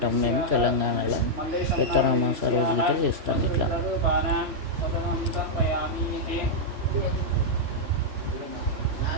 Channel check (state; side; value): late; left; 3.0 ms